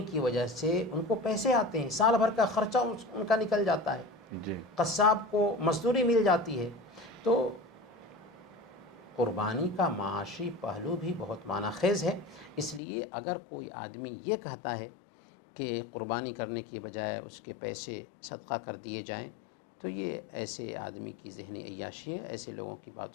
کی وجہ سے ان کو پیسے آتے ہیں، سال بھر کا خرچہ ان کا نکل جاتا ہے، جی قصاب کو مزدوری مل جاتی ہے۔ تو قربانی کا معاشی پہلو بھی بہت معنی خیز ہے، اس لیے اگر کوئی آدمی یہ کہتا ہے کہ قربانی کرنے کی بجائے اس کے پیسے صدقہ کر دیے جائیں، تو یہ ایسے آدمی کی ذہنی عیاشی ہے، ایسے لوگوں کی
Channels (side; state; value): right; drops out; at 12.8 s